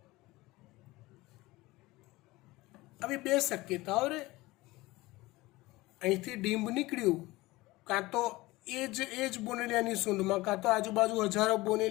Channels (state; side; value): quieter; right; 20.1 dB